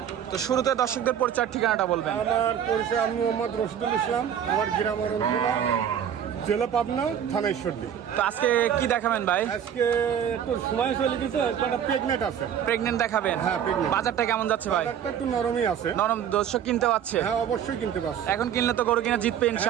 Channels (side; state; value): left; quieter; 9.1 dB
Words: তো শুরুতে দর্শকদের পরিচয় ঠিকানাটা বলবেন। আমার পরিচয় আমি মোহাম্মদ রশিদুল ইসলাম। আমার গ্রাম অরণখোলা, জেলা পাবনা, থানা ঈশ্বরদী। তো আজকে কি দেখাবেন ভাই? আজকে একটু সময় চলে গেছে, একটা প্রেগনেন্ট আছে। প্রেগনেন্ট দেখাবেন? হ্যাঁ, প্রেগনেন্ট। বাজারটা কেমন যাচ্ছে ভাই? বাজারটা একটু নরমই আছে। নরম? দর্শক কিনতে পারছে? হ্যাঁ, অবশ্যই কিনতে পারছে। এখন কিনলে তো গরু কিনা জিতবে